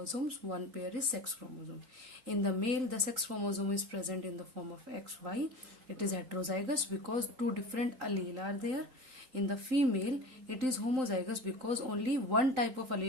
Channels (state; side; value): late; left; 3.8 ms